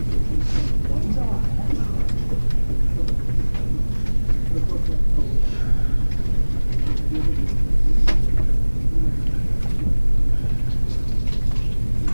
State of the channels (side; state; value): both; inverted; correlation -1.00